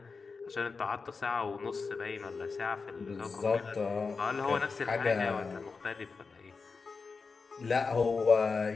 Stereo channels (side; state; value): right; quieter; 4.7 dB